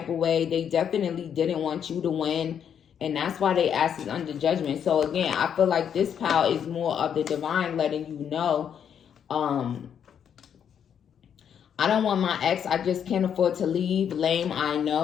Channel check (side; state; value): right; quieter; 8.4 dB